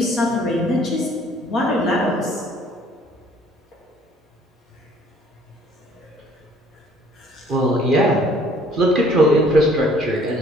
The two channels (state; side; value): normal; both; correlation 0.58